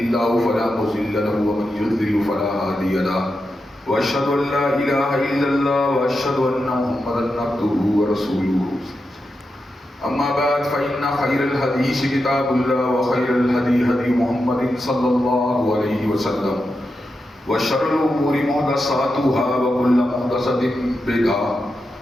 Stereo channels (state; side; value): normal; both; correlation 0.88